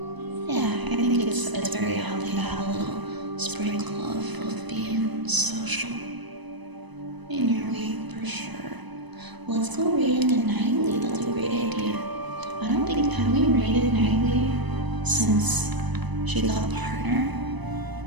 Yeah, I think it's very healthy to have a little sprinkle of being social in your week for sure. Let's go raid into Nightly. That's a great idea. I don't think have we raided Nightly since she got a partner.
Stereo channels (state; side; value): late; left; 1.0 ms